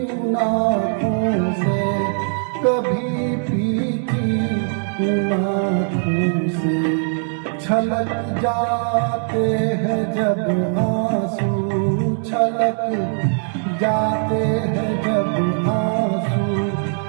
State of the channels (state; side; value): silent; left; 60 dB below the other